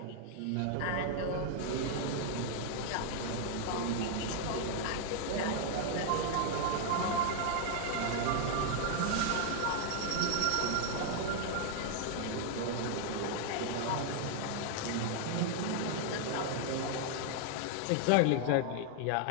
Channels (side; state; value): both; different; correlation 0.00